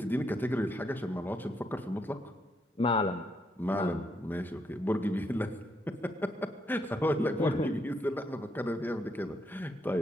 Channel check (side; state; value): both; normal; correlation 0.77